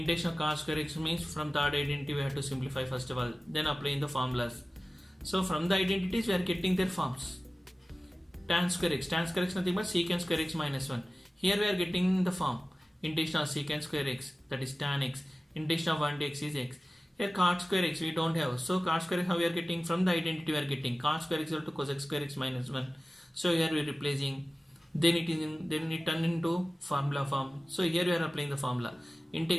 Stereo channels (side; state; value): both; normal; correlation 0.96